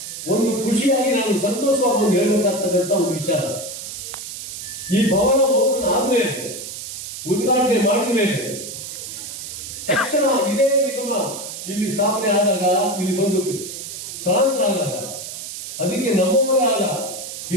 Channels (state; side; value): noise; right; hiss, 9 dB below the sound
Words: ಒಂದು ಖುಷಿಯಾಗಿ ನಾನು ಸಂತೋಷವಾಗಿ ಒಂದು ಹೇಳಬೇಕಾಗ್ತಕ್ಕಂಥ ಒಂದು ವಿಚಾರ, ಈ ಭವನ ಓಪನ್ ಆದ್ಮೇಲೆ ಉದ್ಘಾಟನೆ ಮಾಡಿದ ಮೇಲೆ ತಕ್ಷಣ ಇದೇ ನಿಗಮ ಇಲ್ಲಿ ಸ್ಥಾಪನೆ ಆದಾಗ ಇಲ್ಲಿ ಬಂದು ಸ್ಥಳಾಂತರ ಆದಾಗ ಅದಕ್ಕೆ ನಮ್ಮವರೇ ಆದ